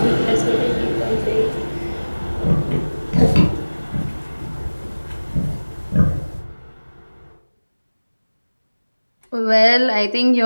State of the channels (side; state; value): both; inverted; correlation -1.00